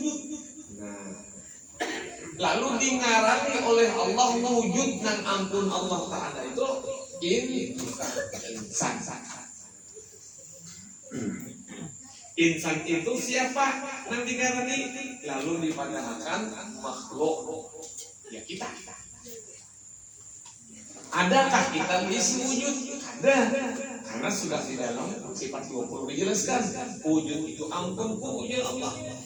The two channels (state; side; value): identical; both; correlation 1.00